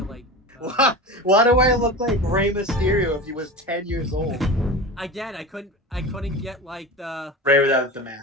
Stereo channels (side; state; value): both; normal; correlation 0.29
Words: like. Why do I look like Rey Mysterio if he was 10 years old? Again, I couldn't get like the Ray without the